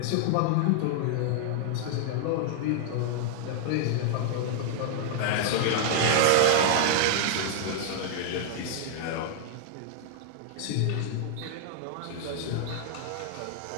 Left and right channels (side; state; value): both; different; correlation -0.01